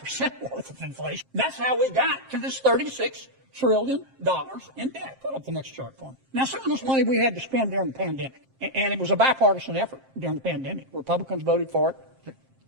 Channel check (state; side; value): late; left; 7.5 ms